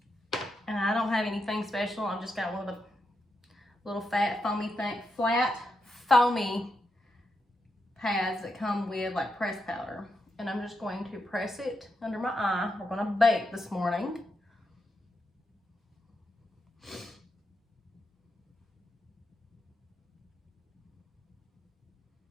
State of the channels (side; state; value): both; normal; correlation 0.84